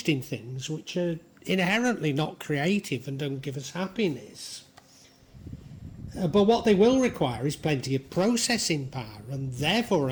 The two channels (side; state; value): both; identical; correlation 1.00